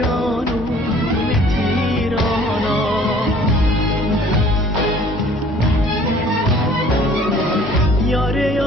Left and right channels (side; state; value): both; normal; correlation 0.53